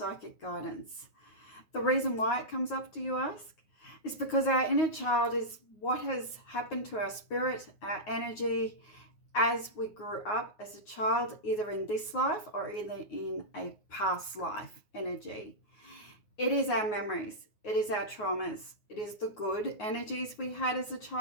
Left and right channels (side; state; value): right; late; 9.6 ms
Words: guidance. The reason why it comes up, do you ask? Is because our inner child is what has happened to our spirit, our energy, as we grew up as a child, either in this life or either in a past life energy. It is our memories, it is our traumas, it is the good energies we had as a